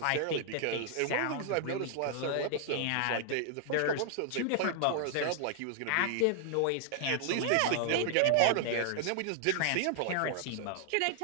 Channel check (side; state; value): both; different; correlation -0.01